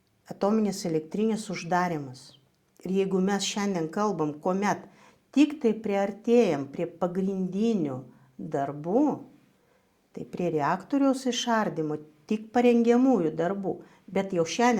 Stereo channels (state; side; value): identical; both; correlation 1.00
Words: Atominės elektrinės uždarimas. Ir jeigu mes šiandien kalbam, kuomet tik tai priartėjam prie pagrindinių darbų, tai prie reaktoriaus išardymo tik parengiamųjų darbų, bet jau